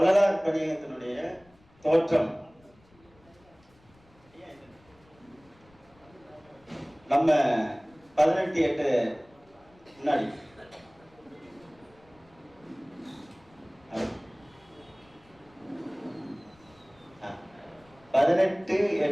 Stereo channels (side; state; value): left; noise; rumble, 29 dB below the sound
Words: பணியகத்தினுடைய தோற்றம் நம்ம 18/8 முன்னாடி